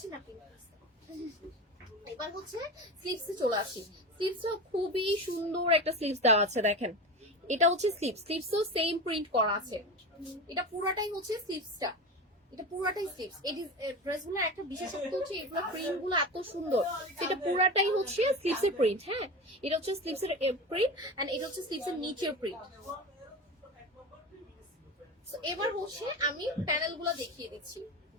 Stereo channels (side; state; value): both; normal; correlation 0.26